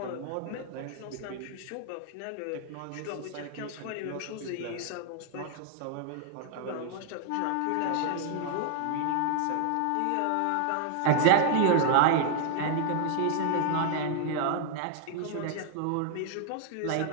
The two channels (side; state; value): both; different; correlation 0.00